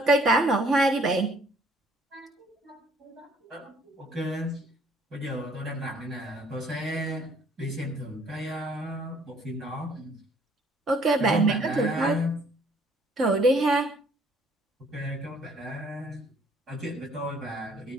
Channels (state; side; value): normal; both; correlation 0.61